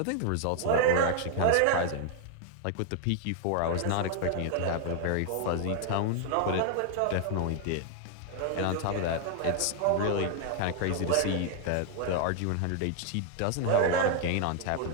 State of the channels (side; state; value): both; different; correlation 0.00